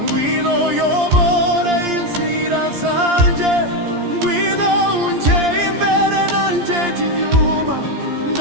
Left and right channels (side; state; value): left; late; 14 ms